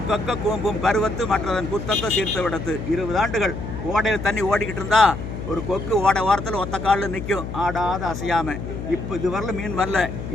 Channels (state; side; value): noise; left; hum, 7 dB below the sound